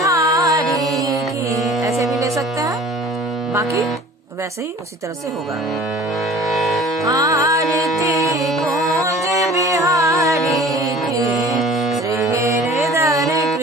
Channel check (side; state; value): both; normal; correlation 0.45